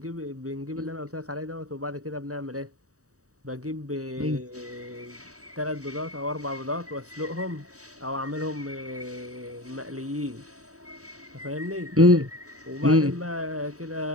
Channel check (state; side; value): late; left; 0.66 ms